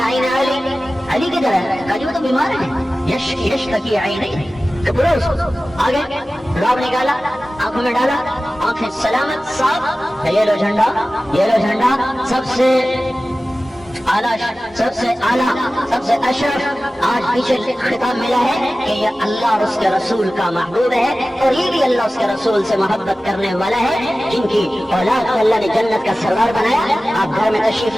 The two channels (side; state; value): both; normal; correlation 0.96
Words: علی کدھر ہے؟ کہا جی وہ تو بیمار ہے، یش تکی عینی، برو آگے راب نکالا، آنکھوں میں ڈالا، آنکھیں سلامت صاف، یہ لو جھنڈا سب سے اعلیٰ، سب سے اشرف، آج پیچھے خطاب ملا ہے کہ یہ اللہ اور اس کے رسول کا محبوب ہے، اور یہ بھی اللہ اس کے رسول سے محبت کرنے والا ہے، جن کی اولاد کو اللہ نے جنت کا سردار بنایا۔ آپ گھر میں تشریف